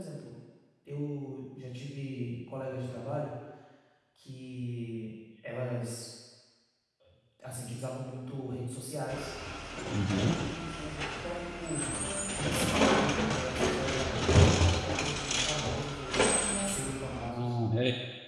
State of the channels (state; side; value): identical; both; correlation 1.00